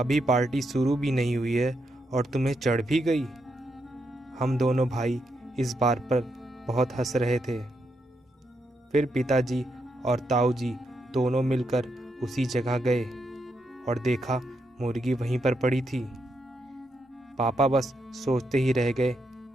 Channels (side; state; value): both; normal; correlation 0.81